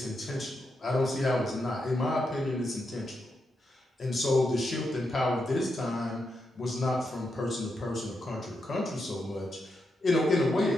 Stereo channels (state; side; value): normal; both; correlation 0.84